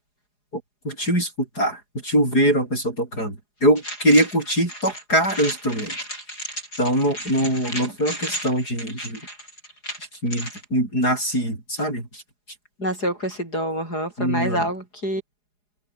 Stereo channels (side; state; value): right; late; 4.8 ms